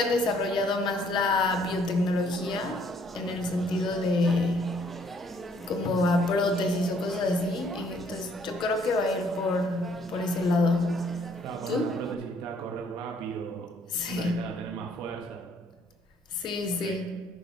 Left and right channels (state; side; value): normal; both; correlation 0.64